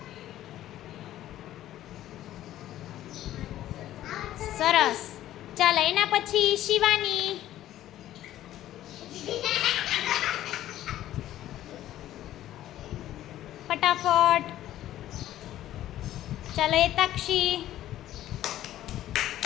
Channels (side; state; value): right; quieter; 13.2 dB